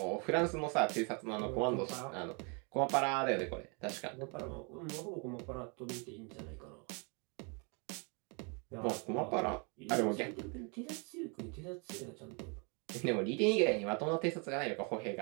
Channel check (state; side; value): quieter; left; 34.0 dB